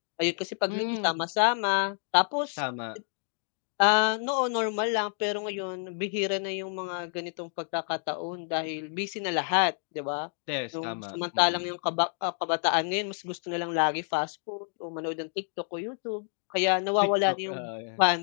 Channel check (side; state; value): right; silent; 59 dB below the other